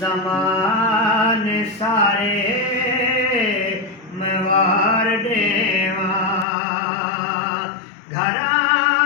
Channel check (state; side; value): drops out; right; at 6.5 s